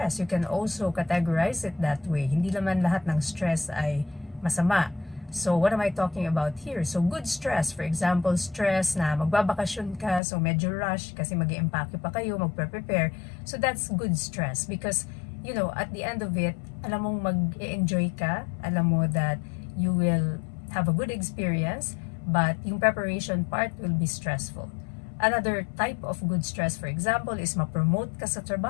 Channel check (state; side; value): drops out; right; at 10.2 s